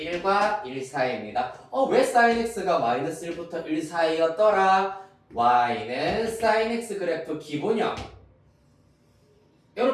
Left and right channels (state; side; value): identical; both; correlation 1.00